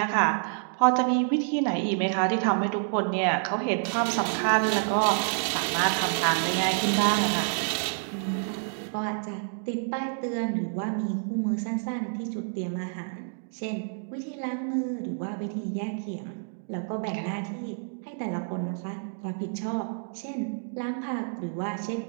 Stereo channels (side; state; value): left; silent; digital silence